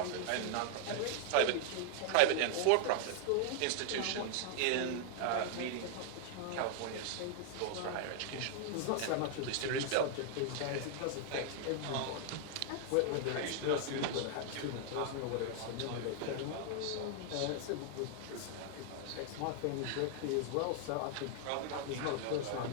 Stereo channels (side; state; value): both; different; correlation -0.01